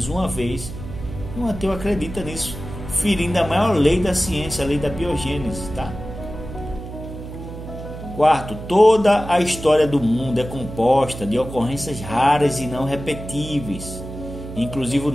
uma vez, e um ateu acredita nisso, ferindo a maior lei da ciência, a lei da biogênese, tá? Quarto, toda a história do mundo é composta de ocorrências raras e não repetíveis, inclusive o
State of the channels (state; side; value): noise; right; hum, 11 dB below the sound